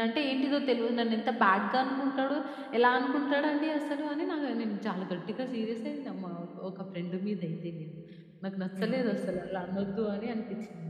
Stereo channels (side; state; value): both; identical; correlation 1.00